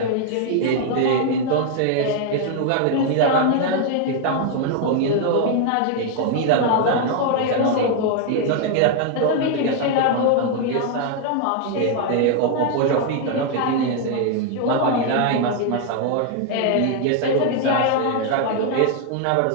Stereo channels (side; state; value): both; different; correlation 0.00